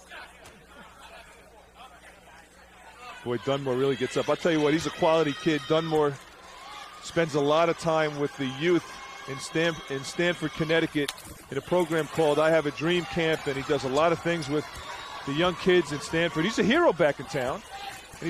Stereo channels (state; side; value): identical; both; correlation 1.00